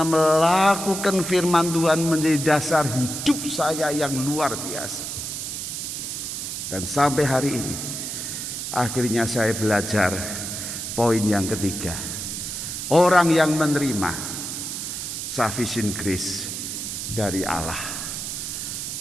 melakukan firman Tuhan menjadi dasar hidup saya yang luar biasa. Dan sampai hari ini, akhirnya saya belajar poin yang ketiga. Orang yang menerima sufficient grace dari Allah.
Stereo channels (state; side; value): noise; right; hiss, 5 dB below the sound